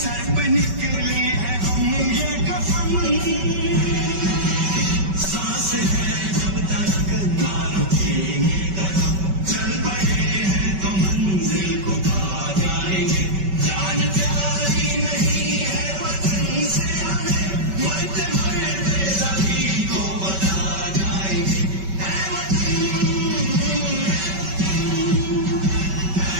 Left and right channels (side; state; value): left; late; 5.2 ms